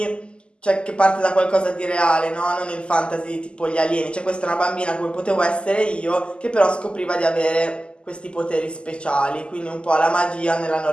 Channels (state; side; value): late; right; 0.051 ms